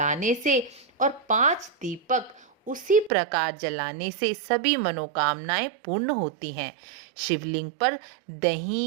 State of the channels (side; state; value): left; drops out; at 3.1 s